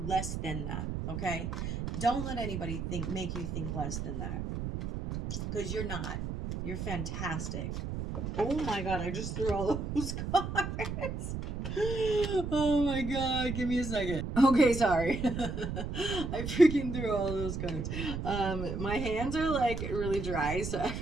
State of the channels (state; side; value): noise; right; rumble, 4 dB below the sound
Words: than that. Okay, don't let anybody make you think less than that, because you're not. You're fantastic. Oh my God, I just threw all those cards. Oh my God, give me a second. Okay, sorry. I freaking threw all those cards. My hands are like really dry, so